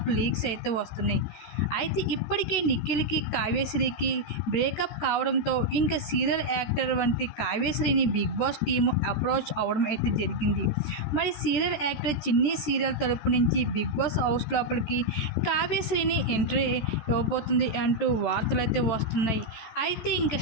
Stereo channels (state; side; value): late; right; 13 ms